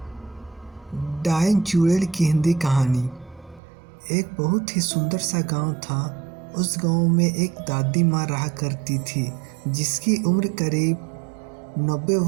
डायन चुड़ैल की हिंदी कहानी। एक बहुत ही सुंदर सा गांव था। उस गांव में एक दादी माँ रहा करती थी जिसकी उम्र करीब 90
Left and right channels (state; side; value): drops out; left; at 3.6 s